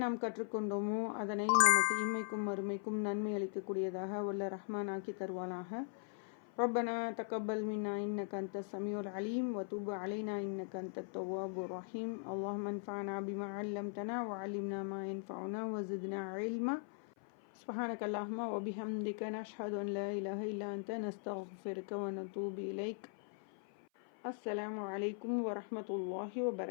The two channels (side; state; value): right; silent; 51 dB below the other